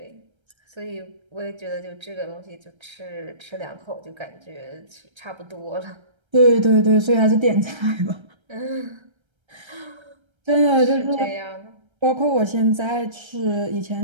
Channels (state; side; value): late; left; 1.3 ms